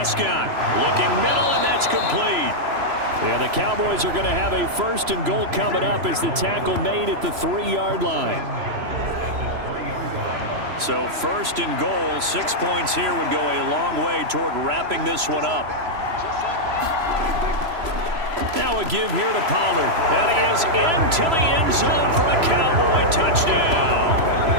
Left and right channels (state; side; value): late; left; 3.0 ms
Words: looking middle, and that's complete. Yeah, the Cowboys are going to have a 1st and goal coming up as the tackle made at the 3-yard line. So 1st and goal, 6 points here would go a long way toward wrapping this one up. Now a give here to Pollard. And he is into the end zone for a Cowboy touchdown.